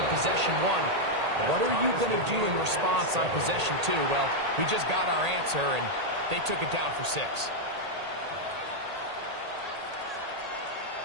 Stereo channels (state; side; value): late; left; 1.8 ms